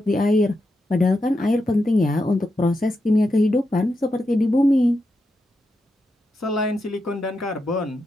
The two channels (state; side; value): normal; both; correlation 0.86